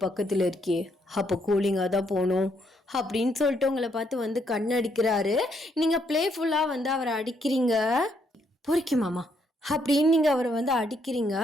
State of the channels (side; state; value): both; normal; correlation 0.73